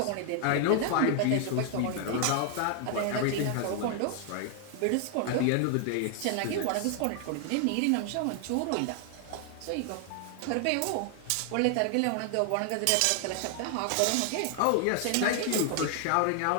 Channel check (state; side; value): different; both; correlation 0.00